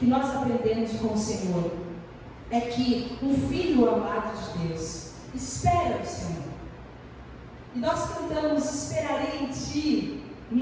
nós aprendemos com o Senhor é que um filho amado de Deus espera o Senhor. E nós cantamos: esperarei em ti,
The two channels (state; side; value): identical; both; correlation 1.00